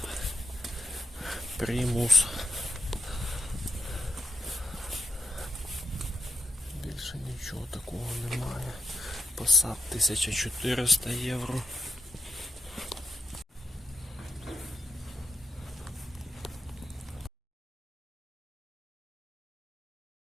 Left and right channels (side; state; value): both; normal; correlation 0.82